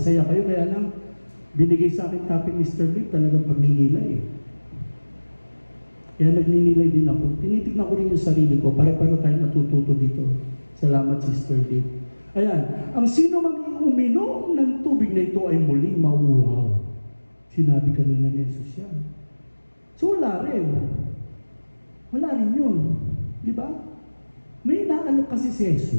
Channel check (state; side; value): inverted; both; correlation -1.00